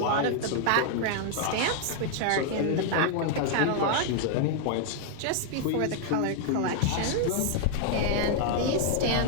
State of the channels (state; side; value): different; both; correlation 0.00